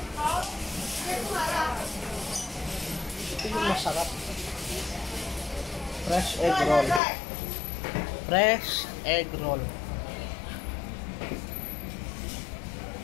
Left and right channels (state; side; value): drops out; right; at 7.0 s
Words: Ito yung masarap. Fresh egg roll. Fresh egg roll.